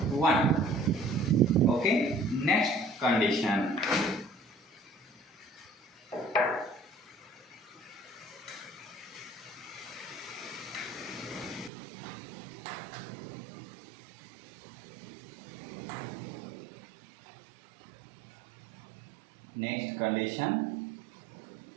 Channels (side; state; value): left; drops out; at 11.7 s